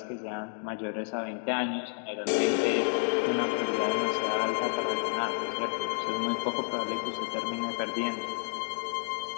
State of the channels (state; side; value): silent; right; 58 dB below the other